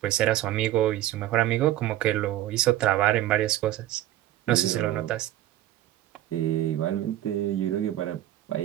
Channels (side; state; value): left; quieter; 13.8 dB